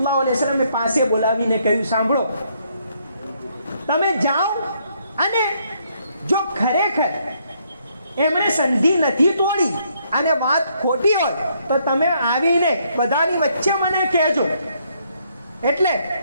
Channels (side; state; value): both; inverted; correlation -0.71